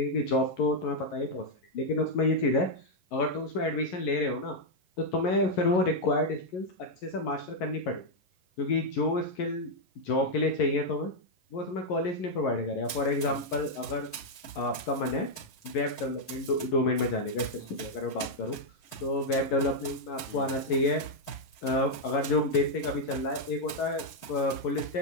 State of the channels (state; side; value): late; right; 11 ms